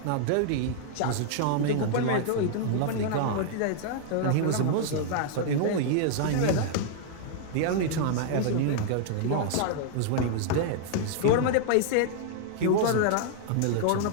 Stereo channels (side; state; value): both; different; correlation -0.01